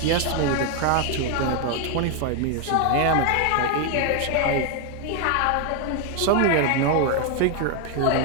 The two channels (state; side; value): different; both; correlation 0.01